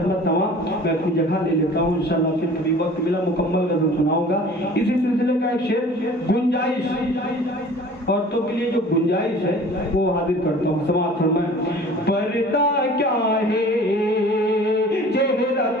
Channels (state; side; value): normal; both; correlation 0.46